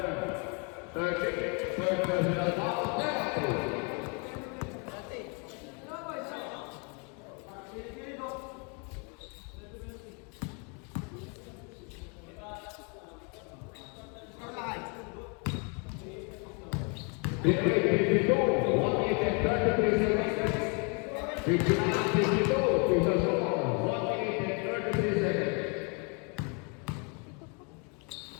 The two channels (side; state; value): right; quieter; 35.0 dB